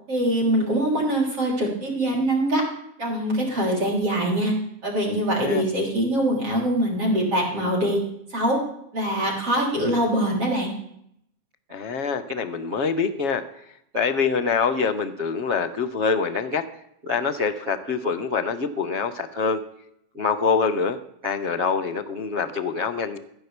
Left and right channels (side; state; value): left; late; 7.4 ms